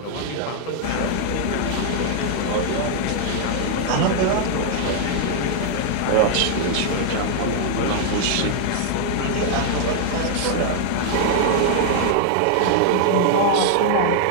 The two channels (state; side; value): different; both; correlation 0.00